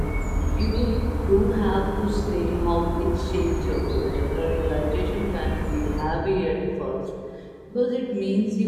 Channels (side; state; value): both; identical; correlation 1.00